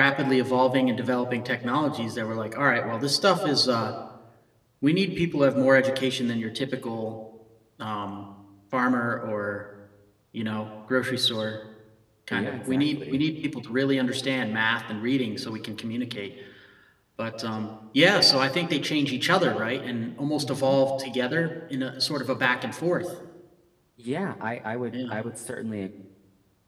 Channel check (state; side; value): identical; both; correlation 1.00